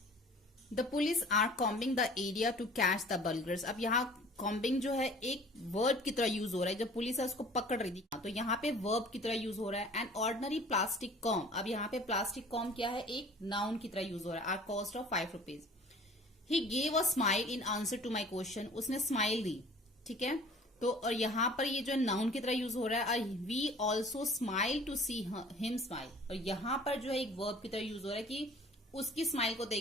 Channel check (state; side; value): normal; both; correlation 0.48